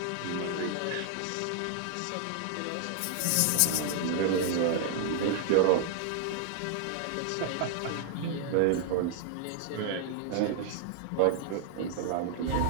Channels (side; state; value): both; different; correlation -0.01